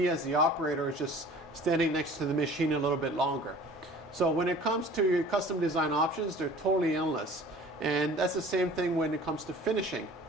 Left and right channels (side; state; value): both; normal; correlation 0.46